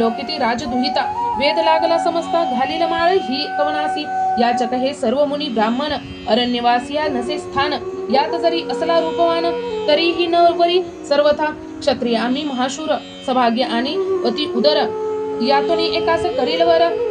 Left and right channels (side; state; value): both; identical; correlation 1.00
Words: राजदुहिता वेद लागला समजता घालील माळ ही कवनासी याचक हे सर्व मुनी ब्राह्मण अरण्यवासिया नसे स्थान यात जरी असला रूपवान तरीही न वरी सर्वथा क्षत्रिय आम्ही महाशूर सभाग्य आणि अति उदर यातोनी एकास करील वर